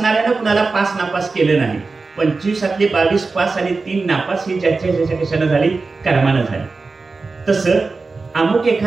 कुणाला पास नापास केलं नाही. 25 22 पास आणि 3 नापास ही ज्याच्या कशानं झाली? कर्मानं झाली. तसं अमुक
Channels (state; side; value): quieter; left; 4.0 dB